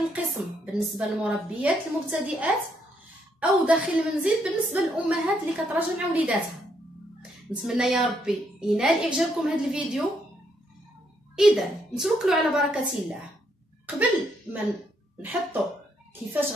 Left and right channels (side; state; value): both; normal; correlation 0.74